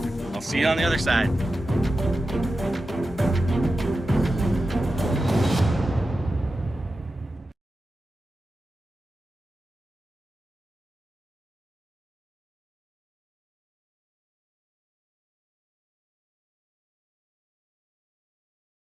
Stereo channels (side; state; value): both; normal; correlation 0.92